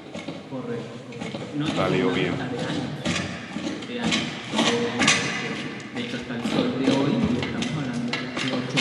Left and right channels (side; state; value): both; identical; correlation 1.00